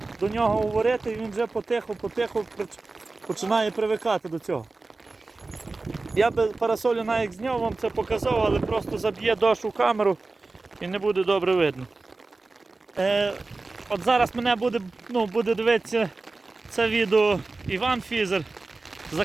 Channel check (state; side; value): quieter; left; 3.5 dB